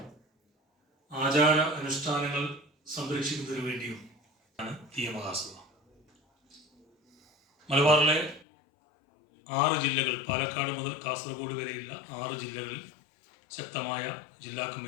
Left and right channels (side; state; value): right; drops out; at 8.5 s